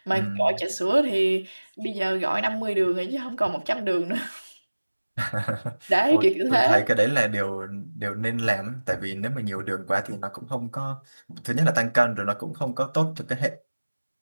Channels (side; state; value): both; inverted; correlation -1.00